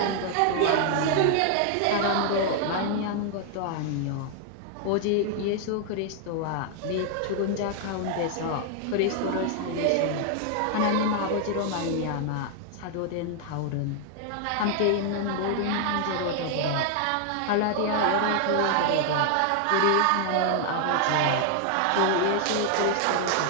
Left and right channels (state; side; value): different; both; correlation 0.00